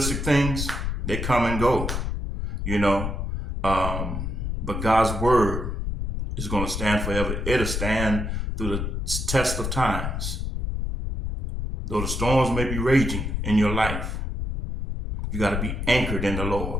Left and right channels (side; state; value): left; noise; rumble, 3 dB below the sound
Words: things, they come and go, but God's word is going to stand forever. It'll stand through the test of times. Though the storms may be raging in your life, you got to be anchored in the